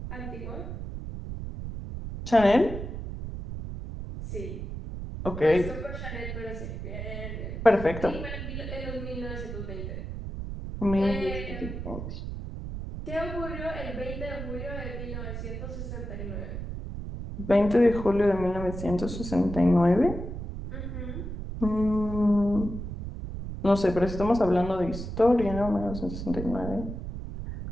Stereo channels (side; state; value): right; noise; rumble, 7 dB below the sound